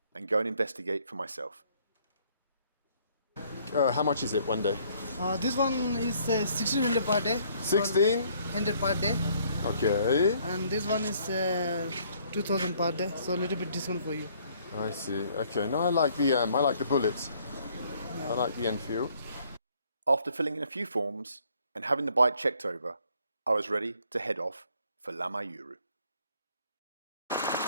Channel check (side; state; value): both; inverted; correlation -0.63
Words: and go and investigate for myself. How much is it one day? This one is 1600 per day. 1600 per day. Okay. And this one is 2000 per day. So a little bit discount for you. I see. Okay. No, I like the bullets. Yeah. I like the Enfield. After filling in a few forms and having the bike checked over, I was ready to head off for Lama Yuru.